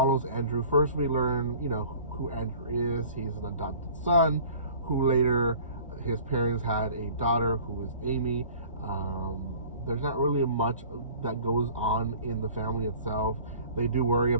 Andrew. First we learn who Andrew is. He's an adopted son who later, his parents had a daughter who is Amy. There's not really much that goes on in the family itself. They do worry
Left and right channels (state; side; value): inverted; both; correlation -0.47